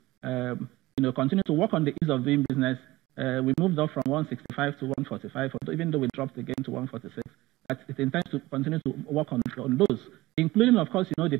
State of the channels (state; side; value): quieter; left; 18.8 dB